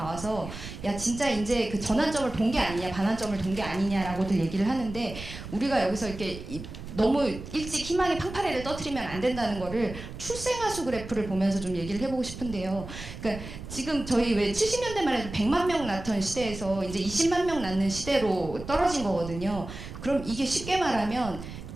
야 진짜 이제 그 전환점을 본 게 아니냐 반환점을 본 게 아니냐라고들 얘기를 하는데 우리가 여기서 이렇게 너무 일찍 희망의 팡파레를 떠트리면 안 된다는 거를 출생아수 그래프를 보면서 좀 얘기를 해보고 싶은데요. 그러니까 지금 저희 왜 70년대만 해도 100만 명 낳던 시대에서 이제 20만 명 낳는 시대로 떨어진 거거든요. 그럼 이게 쉽게 말하면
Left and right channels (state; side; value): noise; right; rumble, 11 dB below the sound